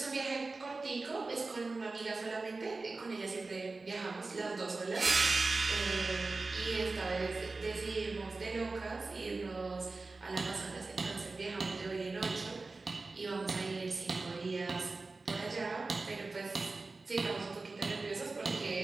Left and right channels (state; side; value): quieter; left; 3.6 dB